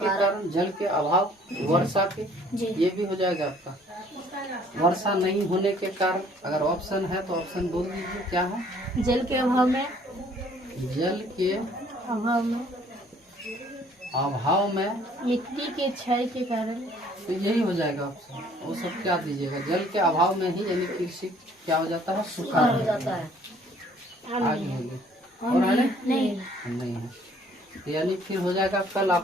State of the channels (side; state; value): both; normal; correlation 0.58